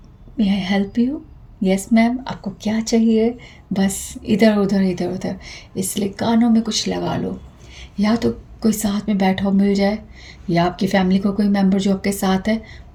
May I help you, yes ma'am, आपको क्या चाहिए, बस इधर उधर इधर उधर। इसलिए कानों में कुछ लगा लो, या तो कोई साथ में बैठा हो मिल जाए, या आपकी फैमिली को कोई मेंबर जो आपके साथ है,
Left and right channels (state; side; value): identical; both; correlation 1.00